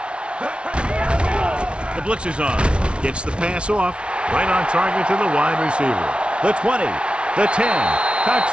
The blitz is on. Gets the pass off. Right on target to the wide receiver. The 20, the 10.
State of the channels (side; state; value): left; late; 0.059 ms